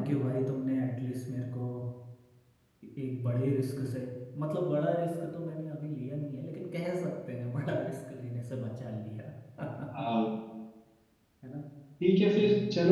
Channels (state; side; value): identical; both; correlation 1.00